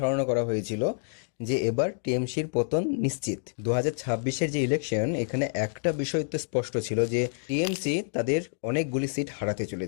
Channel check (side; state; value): right; silent; digital silence